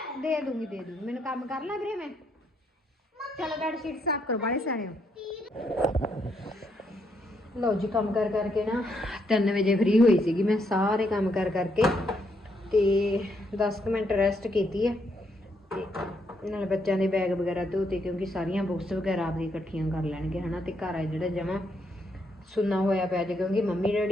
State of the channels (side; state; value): both; normal; correlation 0.75